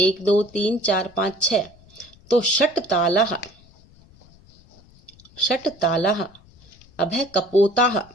2 3 4 5 6। तो षट तालः, षट तालः। अब है कपोताः,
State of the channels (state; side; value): noise; left; rumble, 26 dB below the sound